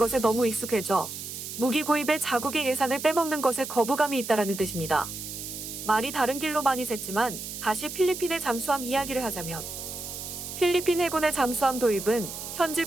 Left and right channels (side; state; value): right; noise; hiss, 8 dB below the sound